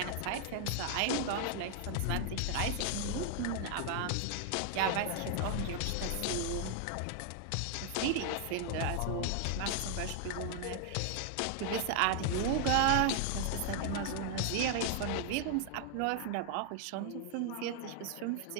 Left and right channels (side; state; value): both; different; correlation 0.00